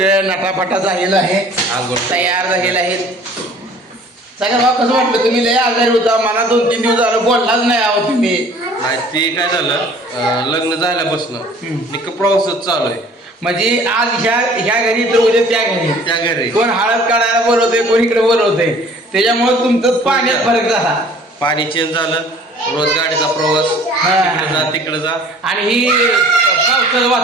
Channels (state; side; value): normal; both; correlation 0.51